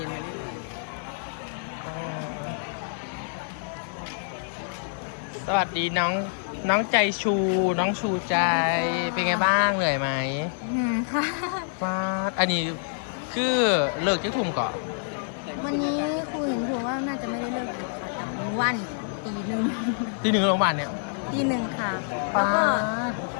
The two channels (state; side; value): silent; right; 57 dB below the other